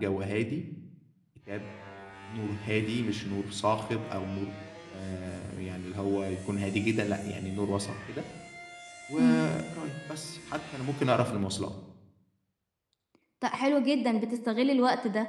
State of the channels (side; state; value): both; identical; correlation 1.00